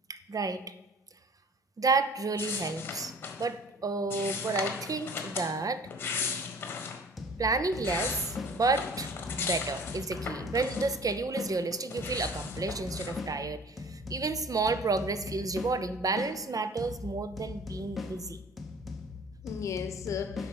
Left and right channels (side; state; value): both; normal; correlation 0.48